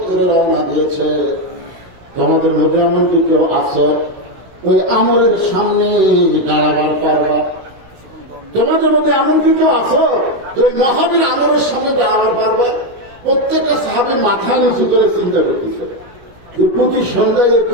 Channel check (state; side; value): late; left; 17 ms